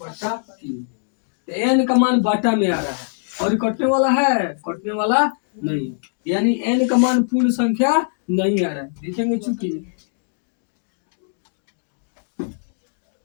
तो n का मान बाटा में आ रहा है और ये कटने वाला है, कटने वाला नहीं, यानी n का मान पूर्ण संख्या नहीं आ रहा है। देखेंगे चूंकि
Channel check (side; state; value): right; silent; digital silence